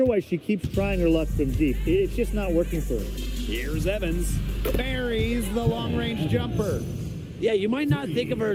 why she keeps trying her luck from deep. It's just not working for her. Here's Evans. Buries the long-range jumper. Yeah, you might not think of her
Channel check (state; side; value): identical; both; correlation 1.00